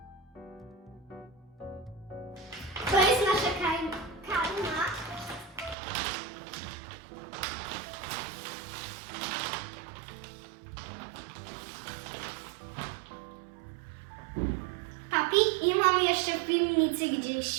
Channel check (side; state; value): left; drops out; at 5.8 s